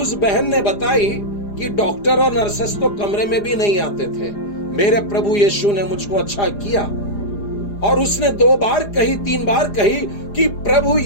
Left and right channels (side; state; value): right; late; 4.9 ms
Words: बहन ने बताई कि डॉक्टर और नर्सेस तो कमरे में भी नहीं आते थे, मेरे प्रभु यीशु ने मुझको अच्छा किया। और उसने 2 बार कही, 3 बार कही कि प्रभु